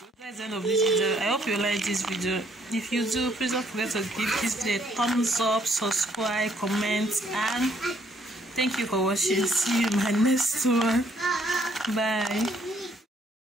that's the end of this video. I hope you like this video. If you do, please don't forget to give this video a thumbs up, subscribe, comment, and thank you for watching. See you in my next one. Bye.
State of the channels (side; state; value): both; normal; correlation 0.67